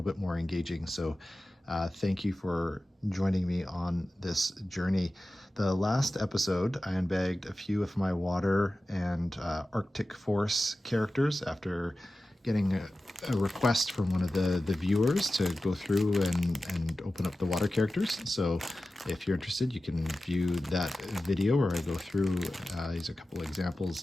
bit more engaging. So thank you for joining me on this journey. The last episode, I unbagged a few of my water and Arctic Force characters after getting a request from one of the viewers to go through and open up the water characters. So if you're interested, you can view that video where I go through. These are a couple examples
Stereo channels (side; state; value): both; normal; correlation 0.95